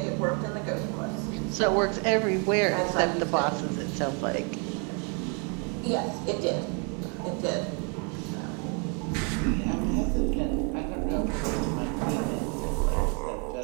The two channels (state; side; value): quieter; left; 37.0 dB